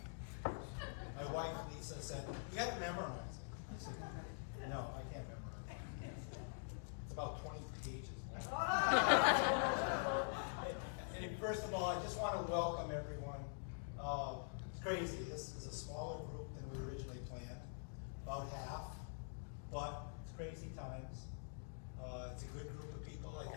My wife, Lisa, said, "You got to memorize it." I said, "No, I can't memorize it. It's about 20 pages." And first of all, I just want to welcome everyone. It's crazy. This is a smaller group than we originally planned, about half, but it's crazy times. It's a good group of people. I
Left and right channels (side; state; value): right; silent; digital silence